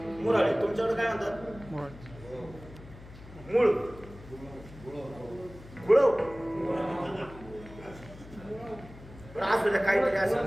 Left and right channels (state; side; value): noise; left; hum, 18 dB below the sound